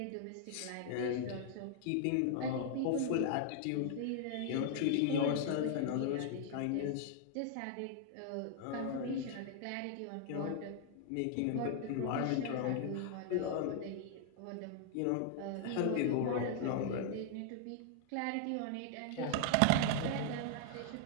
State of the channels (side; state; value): both; different; correlation 0.00